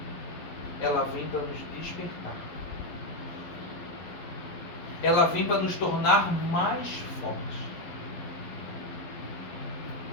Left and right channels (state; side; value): late; right; 11 ms